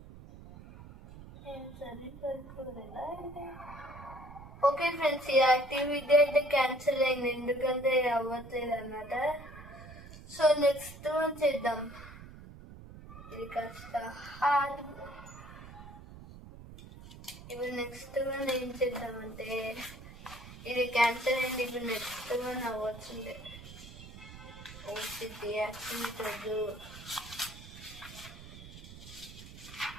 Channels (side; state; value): right; noise; rumble, 15 dB below the sound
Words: ఓకే ఫ్రెండ్స్, ఈ యాక్టివిటీ అయితే క్యాన్సిల్ అయింది, ఎందుకంటే అవ్వట్లేదు అన్నమాట. సో నెక్స్ట్ వన్ చేద్దాం. ఇది కాస్త కాదు. ఇప్పుడు నెక్స్ట్ వన్ ఏం చేద్దామంటే ఇది క్యాన్సర్ అయింది. ఇప్పుడు నెక్స్ట్ వన్ అవ్వచ్చుండే ఓసిటీ యాక్టివిటీ